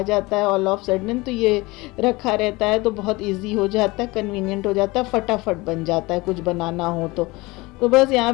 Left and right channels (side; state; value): right; quieter; 22.6 dB